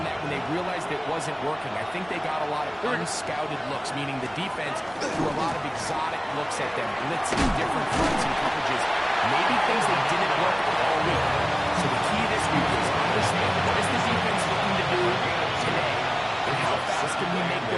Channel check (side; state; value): both; identical; correlation 1.00